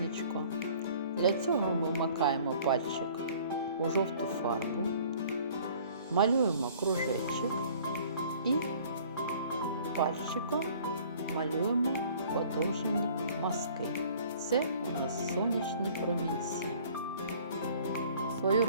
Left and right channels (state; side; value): inverted; both; correlation -0.52